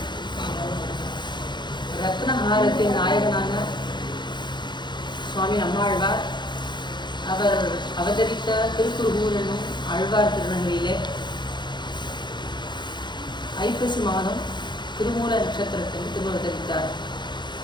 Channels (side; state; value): right; late; 0.22 ms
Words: ரத்னஹாரத்தின் நாயகனான சுவாமி நம்மாழ்வார் அவர் அவதரித்த திருக்குறுகூர் என்னும் ஆழ்வார் திருநகரிலே ஐப்பசி மாதம் திருமூல நட்சத்திரத்தில் திருவதரித்தார்.